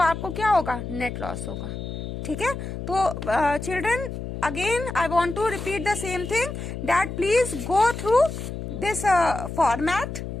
आपको क्या होगा, नेट लॉस होगा। ठीक है, तो children again I want to repeat the same thing that please go through this format,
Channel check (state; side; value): noise; left; hum, 7 dB below the sound